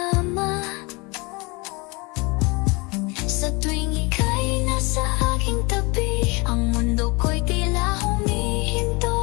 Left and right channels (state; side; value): quieter; right; 27.3 dB